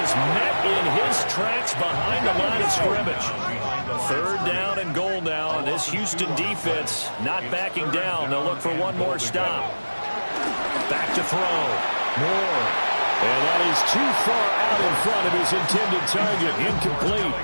is met in his tracks behind the line of scrimmage. 3rd down and goal now. This Houston defense not backing down. They'll look for one more stop. Back to throw. Moore. And that is too far out in front of his intended target. Incomplete.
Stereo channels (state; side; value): inverted; both; correlation -1.00